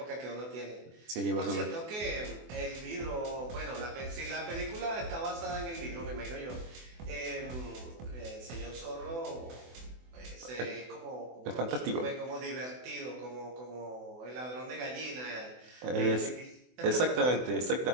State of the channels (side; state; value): left; late; 24 ms